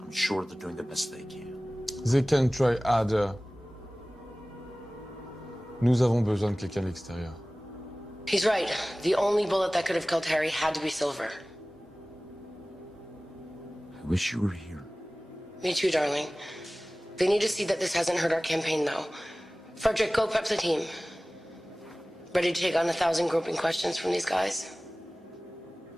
I'm sure they're doing the best they can. They can try harder. Nous avons besoin de quelqu'un de l'extérieur. He's right. The only bullet that could have killed Harry had to be silver. I wish you were here. Me too, darling. They need to see that this hasn't hurt our campaign, though. Frederick, go prep the team. Ready to take on 1,000 groping questions from these guys?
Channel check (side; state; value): both; normal; correlation 0.98